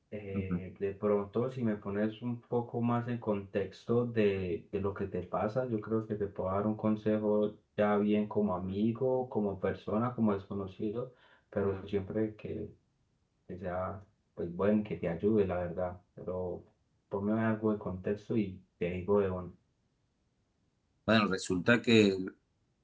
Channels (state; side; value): identical; both; correlation 1.00